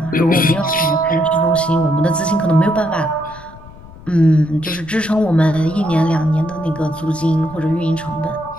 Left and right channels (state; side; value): noise; left; rumble, 19 dB below the sound